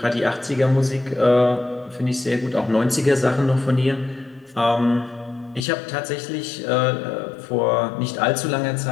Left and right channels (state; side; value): drops out; right; at 5.7 s